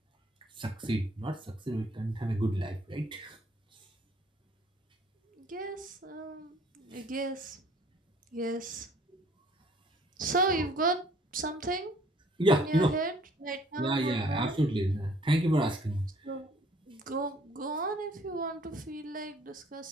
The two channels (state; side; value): normal; both; correlation 0.57